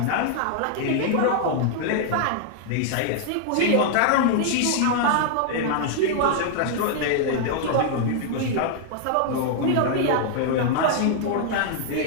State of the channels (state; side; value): different; both; correlation 0.00